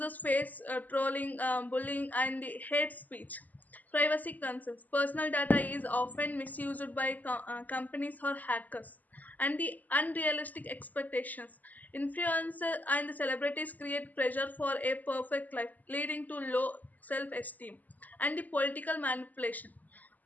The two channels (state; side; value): late; right; 0.081 ms